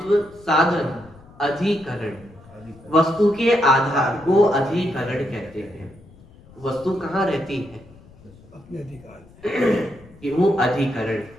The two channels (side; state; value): left; noise; rumble, 24 dB below the sound